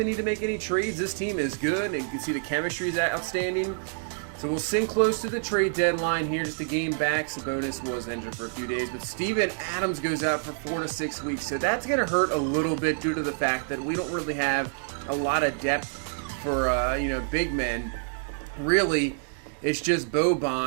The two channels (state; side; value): silent; left; digital silence